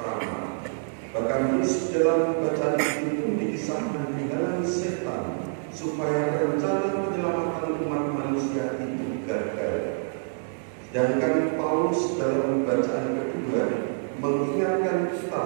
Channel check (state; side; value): silent; left; digital silence